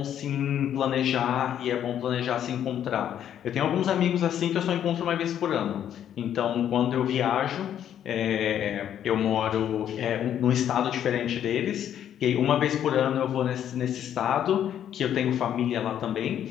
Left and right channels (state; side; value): quieter; right; 10.1 dB